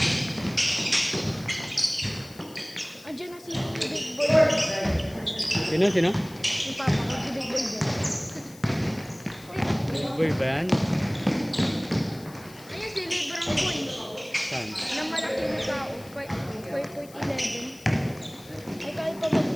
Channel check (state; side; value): noise; left; hiss, 22 dB below the sound